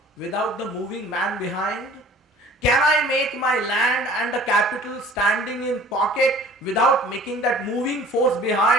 without the moving man behind? Can I make my land and the capital standing in pocket without making that moving force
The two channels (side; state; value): both; normal; correlation 0.48